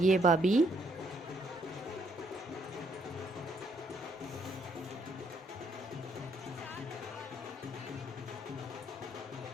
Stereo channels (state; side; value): normal; both; correlation 0.70